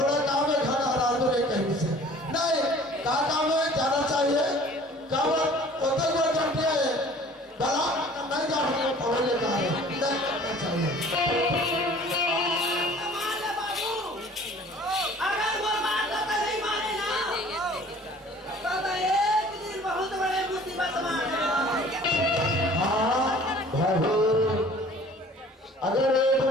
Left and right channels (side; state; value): both; normal; correlation 0.50